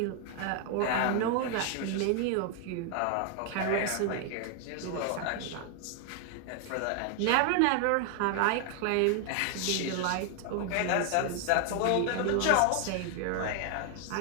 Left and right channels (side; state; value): both; different; correlation 0.00